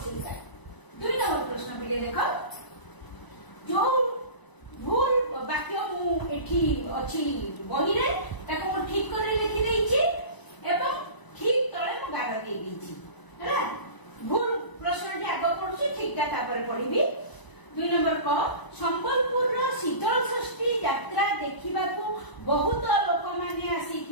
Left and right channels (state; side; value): late; right; 1.0 ms